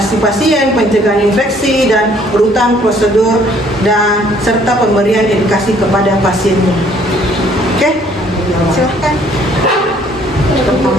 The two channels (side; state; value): both; normal; correlation 0.61